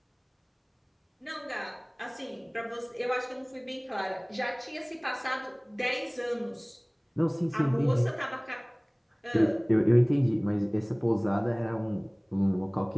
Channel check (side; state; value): both; identical; correlation 1.00